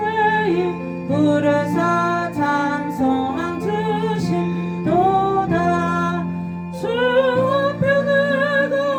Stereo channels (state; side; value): identical; both; correlation 1.00